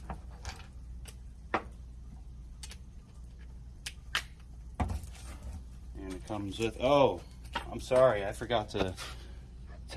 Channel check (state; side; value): identical; both; correlation 1.00